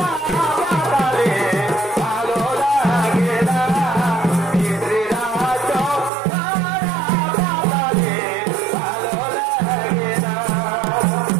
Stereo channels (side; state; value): left; drops out; at 6.1 s